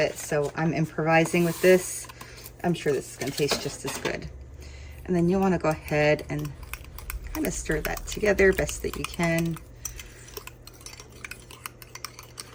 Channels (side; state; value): both; identical; correlation 1.00